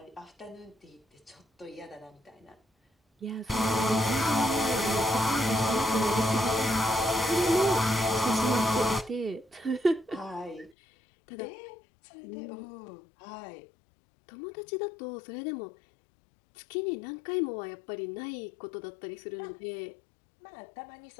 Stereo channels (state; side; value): drops out; right; at 10.8 s